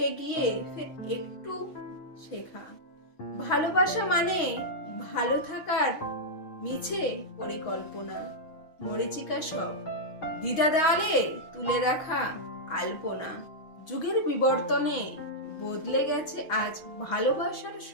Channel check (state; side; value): late; right; 6.2 ms